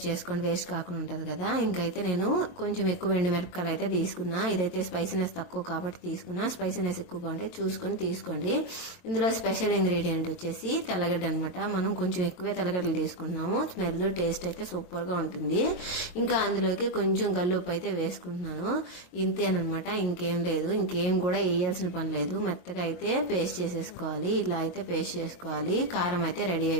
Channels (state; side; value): late; right; 22 ms